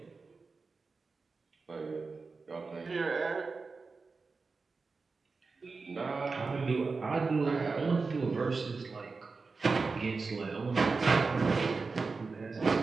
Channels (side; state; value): left; quieter; 4.3 dB